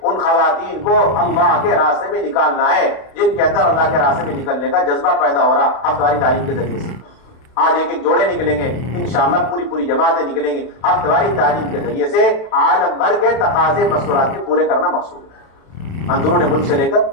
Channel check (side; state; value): right; late; 32 ms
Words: ان خواتین کو اللہ کے راستے میں نکالنا ہے جن کے اندر اللہ کے راستے میں نکلنے کا جذبہ پیدا ہو رہا ہفتہ واری تعلیم کے ذریعے سے۔ آج ایک جوڑے نکلیں گے، انشاءاللہ پوری جماعتیں نکلیں گی ہفتہ واری تعلیم کے ذریعے سے۔ عالم بھر کے تقاضے مستورات کے پورے کرنا مقصود ہے، اندرون ملک سے لے کر